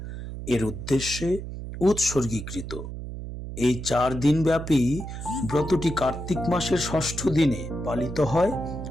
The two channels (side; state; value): right; noise; hum, 8 dB below the sound